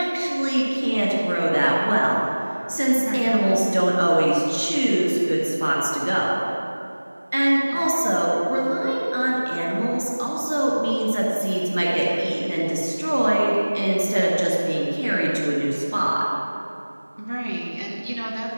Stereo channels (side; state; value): both; inverted; correlation -1.00